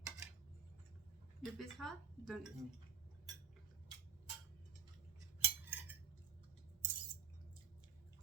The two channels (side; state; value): left; quieter; 7.1 dB